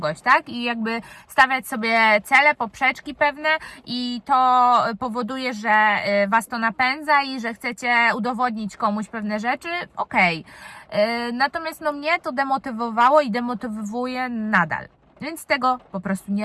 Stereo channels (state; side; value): identical; both; correlation 1.00